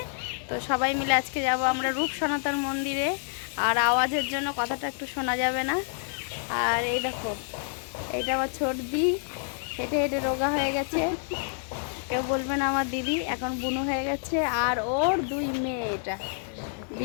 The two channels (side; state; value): right; silent; digital silence